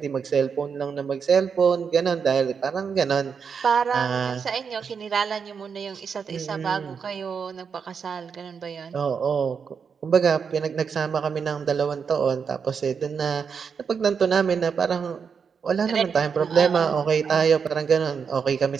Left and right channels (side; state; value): left; quieter; 6.3 dB